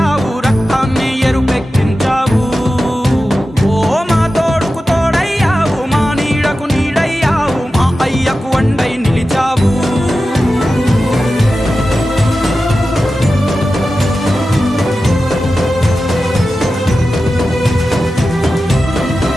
రక్తాన్ని ఎరుపెక్కించావు. ఓ మా తోడుకు తోడయ్యావు, మా నీడకు నీడయ్యావు, మా అయ్యకు వండై నిలిచావు.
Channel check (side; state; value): both; normal; correlation 0.93